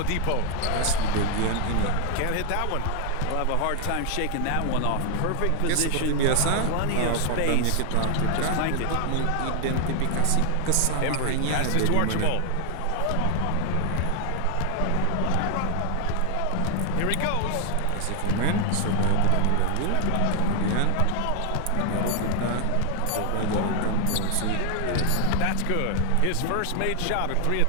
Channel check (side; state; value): both; different; correlation 0.00